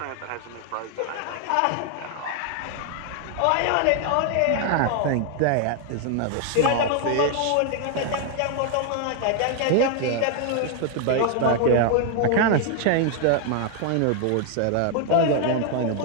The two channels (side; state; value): both; different; correlation 0.00